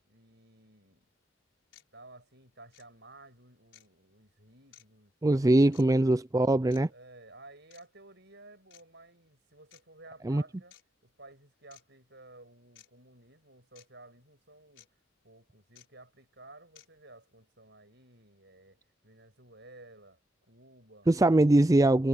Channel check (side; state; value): both; normal; correlation 0.87